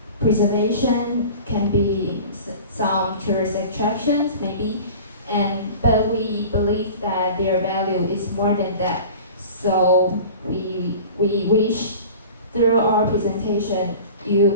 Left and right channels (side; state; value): both; inverted; correlation -0.39